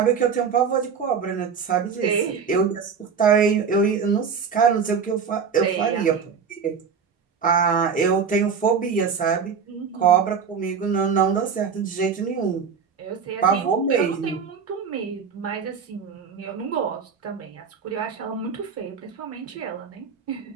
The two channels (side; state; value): left; quieter; 6.3 dB